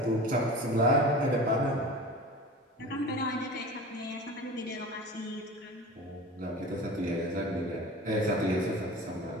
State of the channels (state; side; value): normal; both; correlation 0.36